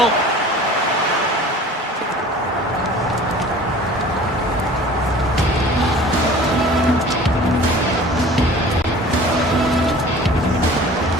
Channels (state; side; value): normal; both; correlation 0.45